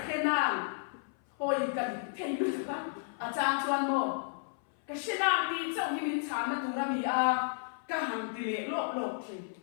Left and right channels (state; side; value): silent; right; 55 dB below the other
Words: khe nàng hồi cần thay đổi các trang chuan mò cái khe nàng thì trong khi mình chán nó tụi nó bị cả hàng tỷ lệ lộp thì